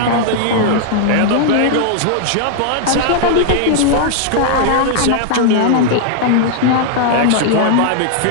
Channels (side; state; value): both; different; correlation -0.01